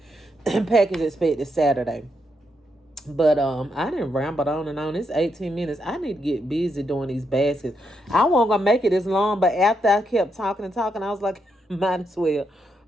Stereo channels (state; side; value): normal; both; correlation 0.80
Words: Package expected Saturday. But I didn't ramble on and on. It's 18 minutes. I need to get busy doing these baskets. I wasn't gonna make it this long, but after I kept talking and talking, I was like, might as well